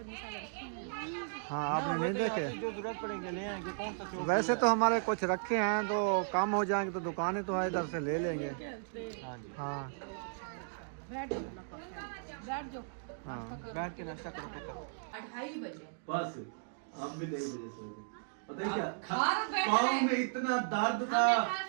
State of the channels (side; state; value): left; silent; digital silence